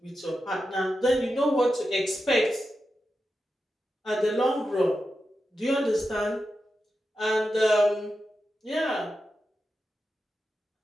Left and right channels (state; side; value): normal; both; correlation 0.90